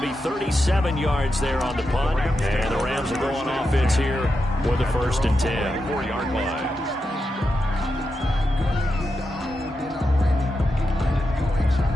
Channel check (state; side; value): normal; both; correlation 0.87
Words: 37 yards there on the punt, and the Rams will go on offense here with the 1st and 10. 4-yard line.